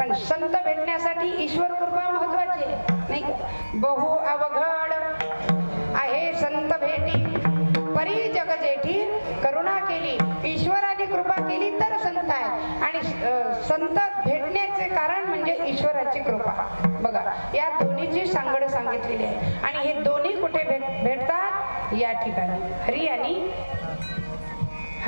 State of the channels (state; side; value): inverted; both; correlation -1.00